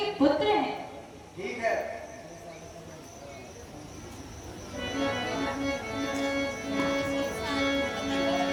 पुत्र हैं। ठीक है।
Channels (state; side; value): identical; both; correlation 1.00